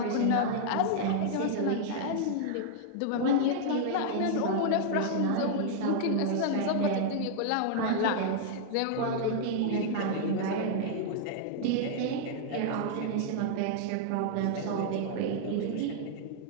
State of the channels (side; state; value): both; different; correlation -0.01